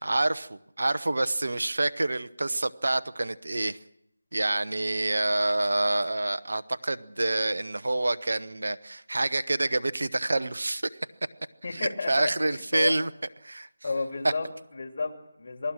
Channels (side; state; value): both; inverted; correlation -0.98